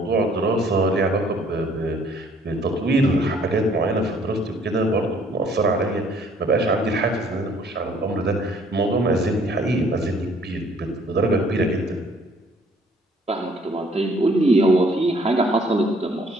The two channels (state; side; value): normal; both; correlation 0.60